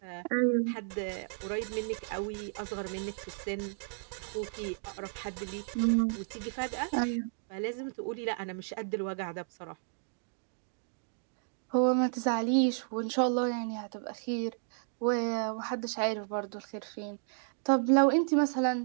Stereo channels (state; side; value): silent; left; digital silence